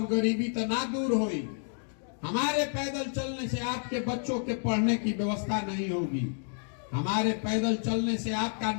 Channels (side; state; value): right; silent; 58 dB below the other